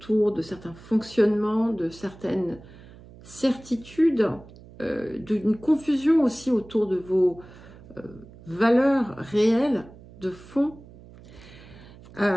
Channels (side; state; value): right; noise; hum, 20 dB below the sound